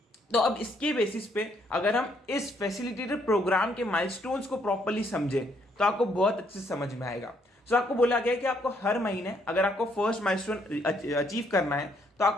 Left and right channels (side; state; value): both; normal; correlation 0.70